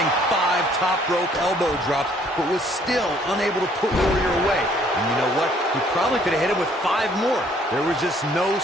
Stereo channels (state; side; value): normal; both; correlation 0.62